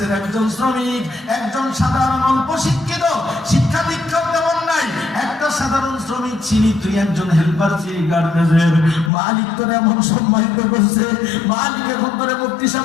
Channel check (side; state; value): right; drops out; at 9.1 s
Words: একজন শ্রমিক, একজন সাধারণ অল্প শিক্ষিত, শিক্ষা দীক্ষা তেমন নাই, একটা সাধারণ শ্রমিক ছিলি, তুই একজন হেল্পার ছিলি গার্মেন্টসের। মালিক তোর এমন সম্মানিত করছে, মালিক এখন তোরে মুক্তি সব